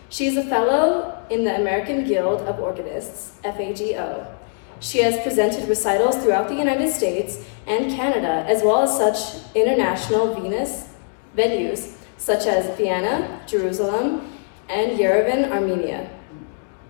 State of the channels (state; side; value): silent; right; digital silence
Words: She is a fellow in the American Guild of Organists, FAGO. She has presented recitals throughout the United States and Canada, as well as such international venues such as Vienna, Jerusalem, and Yerevan, Armenia.